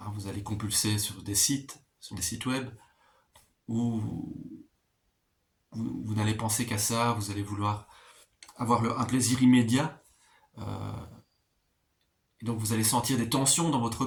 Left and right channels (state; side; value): identical; both; correlation 1.00